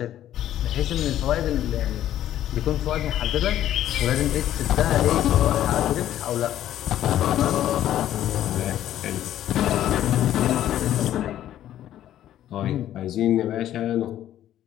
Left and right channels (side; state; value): right; quieter; 12.1 dB